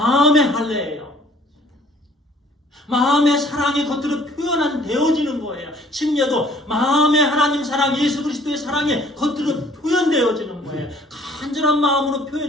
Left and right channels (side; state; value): both; normal; correlation 0.57